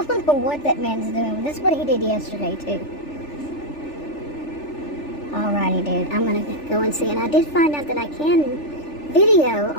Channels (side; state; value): right; late; 3.4 ms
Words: know what that man's doing. That's what he did yesterday too. Alrighty, dude, I'm gonna go and see, and I did find out that I can video